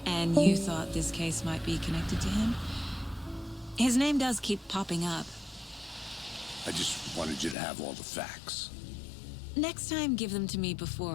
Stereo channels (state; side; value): drops out; right; at 7.6 s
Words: And you thought this case might be connected to him? His name does keep popping up. I just wanted you to have all the facts. Next time, give them to me